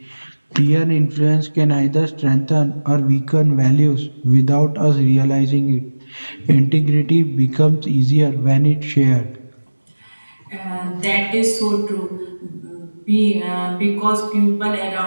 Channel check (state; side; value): inverted; both; correlation -1.00